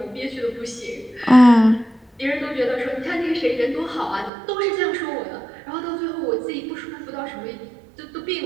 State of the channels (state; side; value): drops out; left; at 4.3 s